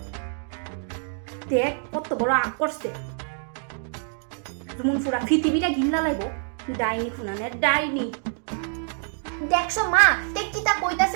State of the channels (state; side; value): silent; left; 56 dB below the other